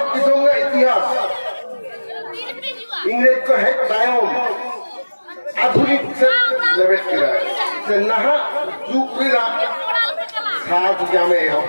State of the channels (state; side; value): inverted; both; correlation -1.00